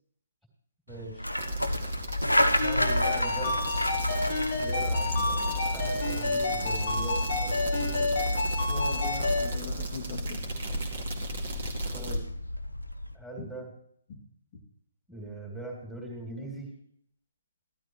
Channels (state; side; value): inverted; both; correlation -0.80